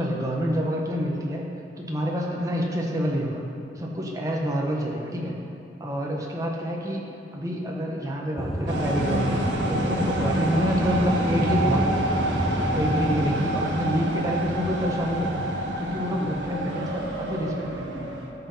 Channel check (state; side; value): normal; both; correlation 0.61